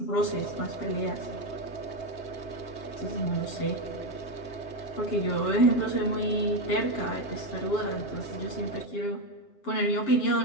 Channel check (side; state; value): right; late; 7.8 ms